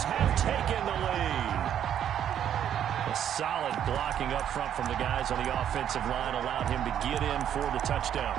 have taken the lead. A solid blocking up front from the guys on the offensive line allowed him to get in for the touchdown.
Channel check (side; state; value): left; quieter; 9.8 dB